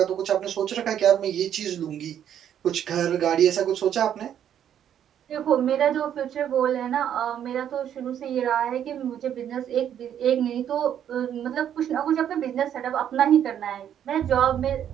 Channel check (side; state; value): left; quieter; 9.8 dB